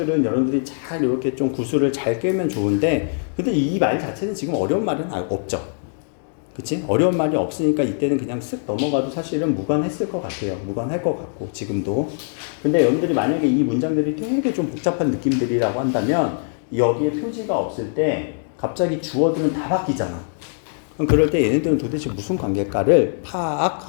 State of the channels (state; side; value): silent; right; 64 dB below the other